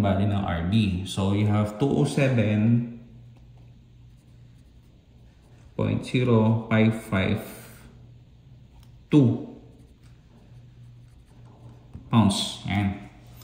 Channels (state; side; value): identical; both; correlation 1.00